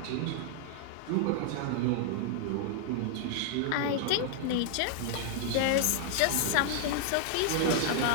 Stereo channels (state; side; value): different; both; correlation 0.00